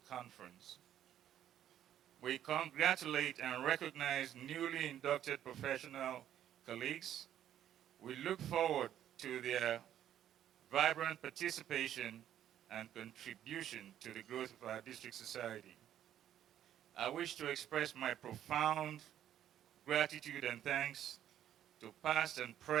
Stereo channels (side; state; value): left; quieter; 11.0 dB